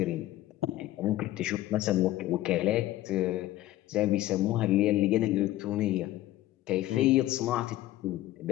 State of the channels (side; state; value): right; quieter; 15.3 dB